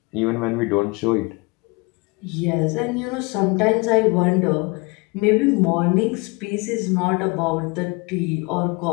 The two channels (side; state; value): right; quieter; 27.8 dB